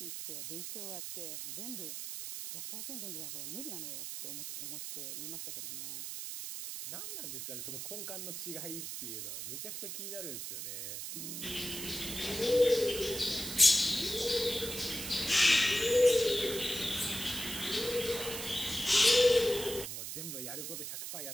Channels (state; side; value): noise; right; hiss, 6 dB below the sound